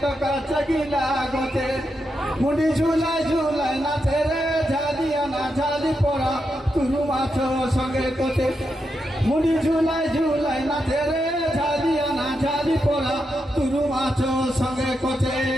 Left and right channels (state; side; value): normal; both; correlation 0.85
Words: কাছে গিলা গছে মুড়ি ঝুলাই ঝুলাই নাচে রে ঝালিয়া না ঝালি পড়া তুরু মাছ সঙ্গে কোতে মুড়ি ঝুলাই ঝুলাই নাচে রে ঝালিয়া না ঝালি পড়া তুরু মাছ সঙ্গে কোতে।